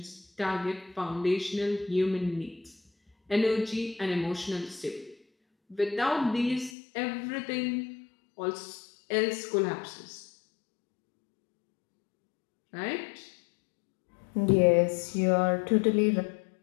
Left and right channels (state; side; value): drops out; right; at 6.7 s